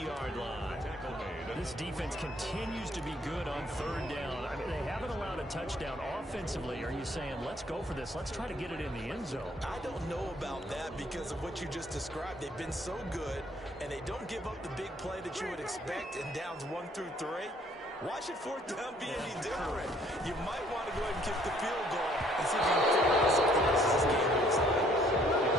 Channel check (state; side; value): normal; both; correlation 0.63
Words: line. This defense continues to be good on 3rd down. I mean, they haven't allowed a touchdown offensively. Are you saying, let's go for this? Let's try to get it in the end zone. I don't know about that because of what you just described. They've been so good, and they don't give up the big play that you would expect in downs 1 through 3. Why should 4th down be any different? You might want to go ahead and kick the field goal and see if you can figure out something else as this game goes on.